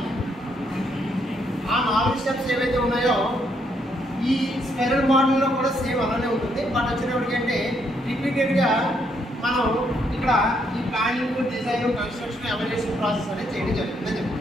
ఆ 4 స్టెప్స్ ఏవైతే ఉన్నాయో ఈ స్పెరల్ మోడల్లో కూడా సేమ్ అలానే ఉంటుంది. బట్ వచ్చేటప్పటికంటే రిపీటెడ్గా మనం ఇక్కడ ఈ planning, design, construction, evolution process అనేది చేయడం జరుగుతుందని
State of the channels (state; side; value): normal; both; correlation 0.73